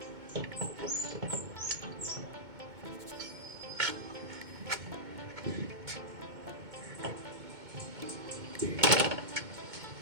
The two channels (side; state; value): left; late; 2.2 ms